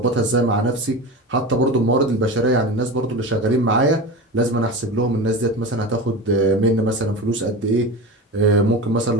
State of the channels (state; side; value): normal; both; correlation 0.26